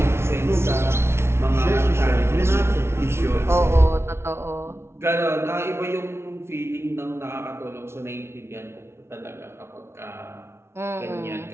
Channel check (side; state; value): left; late; 0.12 ms